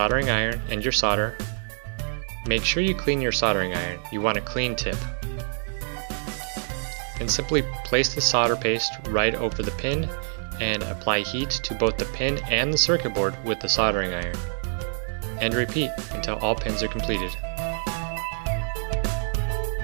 iron and your solder, make sure you clean your soldering iron. You want a clean tip. And simply place the solder paste right over the pin and apply heat to both the pin and the circuit board with the soldering iron. And repeat until all pins are completed.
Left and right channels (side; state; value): left; silent; digital silence